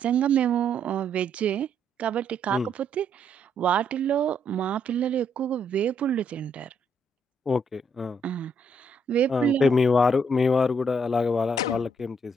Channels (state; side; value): normal; both; correlation 0.72